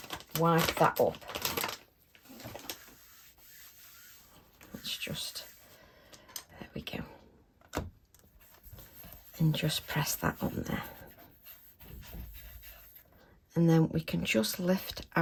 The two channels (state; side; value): identical; both; correlation 1.00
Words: wipe that up. Let's just, there we go, and just press that on there. And then we can just lift